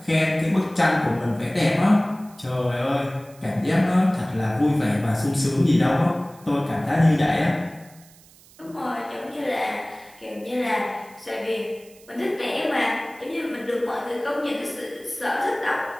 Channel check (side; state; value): right; noise; hiss, 25 dB below the sound